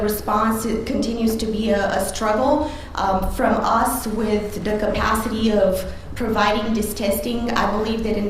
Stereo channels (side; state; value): both; identical; correlation 1.00